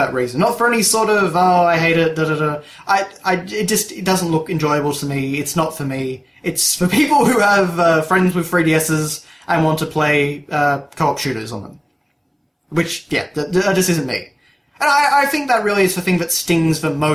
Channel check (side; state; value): both; identical; correlation 1.00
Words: reason. Not for any sort of, I hate it, it doesn't look enjoyable to me. It's not for me. It's for people who have friends with 3DSs and want to play co-op shooters on them. Which, that just isn't me. And I think that really is the thing that stings the